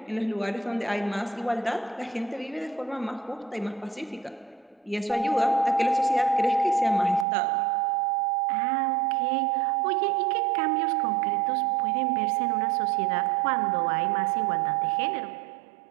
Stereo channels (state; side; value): drops out; left; at 7.2 s